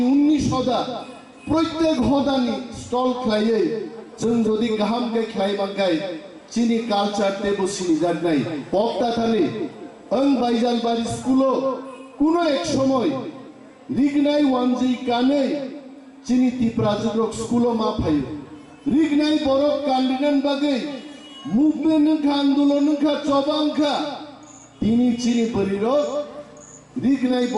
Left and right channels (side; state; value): both; identical; correlation 1.00